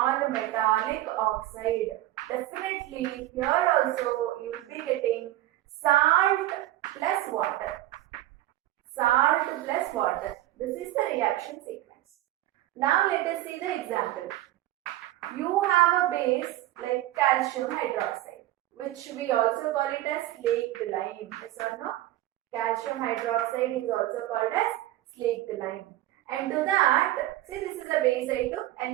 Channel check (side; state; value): left; quieter; 14.8 dB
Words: definitely here also you will be getting salt plus water. Salt plus water. This is the reaction sequence. Now let us see the example. You have a base like calcium hydroxide, which we also call it as slaked lime. Yes or no? Calcium hydroxide is also called as slaked lime. And to that, see, this is a base I took, and